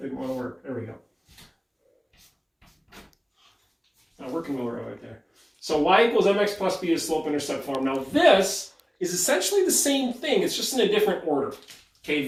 didn't want to work. There we go. Not working well right there. So y equals mx plus b is slope-intercept form. Now this is essentially the same thing. It's just in a different order. Okay,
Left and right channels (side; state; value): both; identical; correlation 1.00